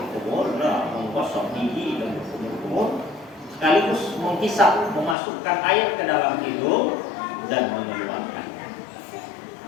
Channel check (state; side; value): drops out; right; at 5.2 s